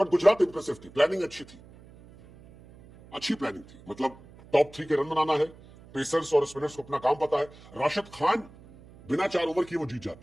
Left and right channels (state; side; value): noise; right; hum, 22 dB below the sound